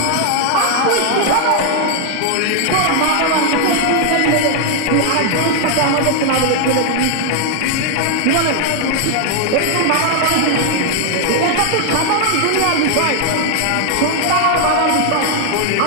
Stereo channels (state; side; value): different; both; correlation 0.00